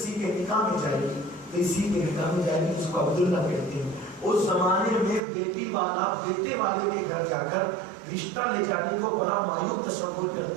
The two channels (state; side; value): drops out; left; at 5.2 s